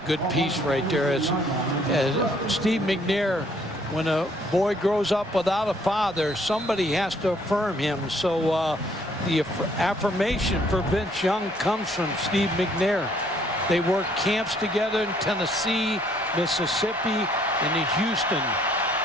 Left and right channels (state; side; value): normal; both; correlation 0.64